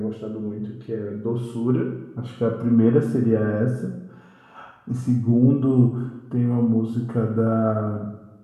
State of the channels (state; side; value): identical; both; correlation 1.00